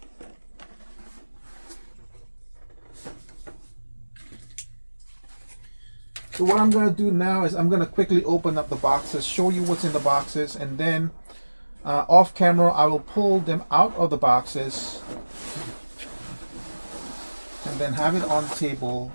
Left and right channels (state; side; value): inverted; both; correlation -1.00